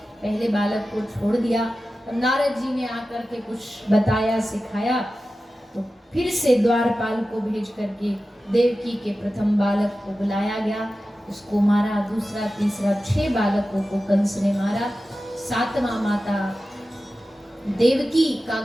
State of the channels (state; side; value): normal; both; correlation 0.94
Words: पहले बालक को छोड़ दिया। तब नारद जी ने आकर के कुछ बताया सिखाया, तो फिर से द्वारपाल को भेज करके देवकी के प्रथम बालक को बुलाया गया, उसको मारा। दूसरा तीसरा 6 बालकों को कंस ने मारा। 7वां माता देवकी का